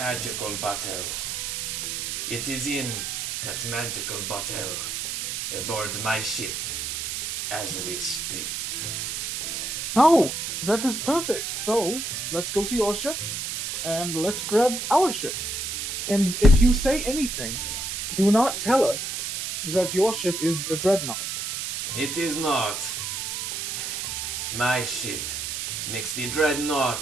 bottle. It is in that magical bottle aboard my ship as we speak. Oh, that is perfect. So, let's go to your ship, and let's grab our ship. And if you say anything, do not tell us that your ship is the Dreadnought. It is not. My ship makes the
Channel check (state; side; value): noise; right; hiss, 3 dB below the sound